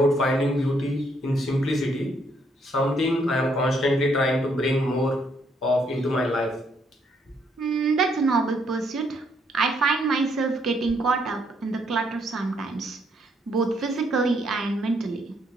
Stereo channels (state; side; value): normal; both; correlation 0.71